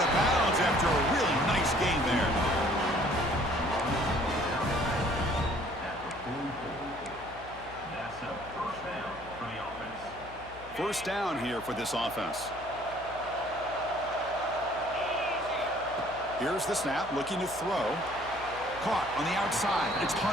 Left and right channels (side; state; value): left; noise; hum, 18 dB below the sound